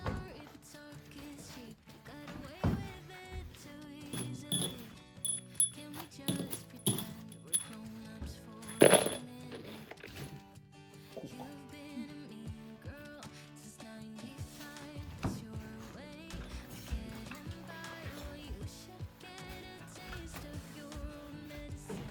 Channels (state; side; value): identical; both; correlation 1.00